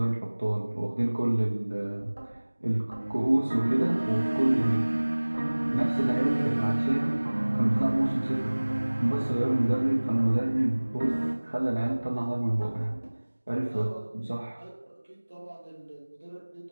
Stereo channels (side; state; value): both; inverted; correlation -1.00